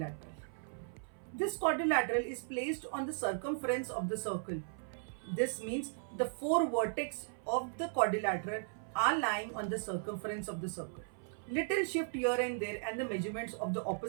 This quadrilateral is placed on the circumference of the circle. This means the four vertex of the quadrilateral are lying on the circumference of the circle. Little shift here and there and the measurements of the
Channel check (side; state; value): left; silent; 53 dB below the other